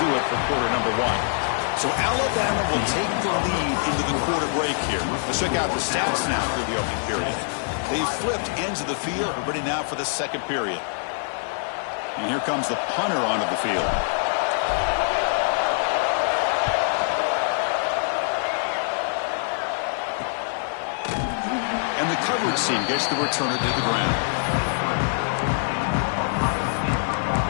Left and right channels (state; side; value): silent; right; digital silence